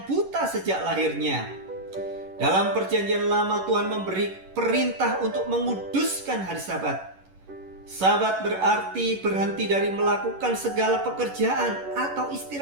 buta sejak lahirnya. Dalam Perjanjian Lama, Tuhan memberi perintah untuk menguduskan hari Sabat. Sabat berarti berhenti dari melakukan segala pekerjaan atau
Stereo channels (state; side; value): late; left; 11 ms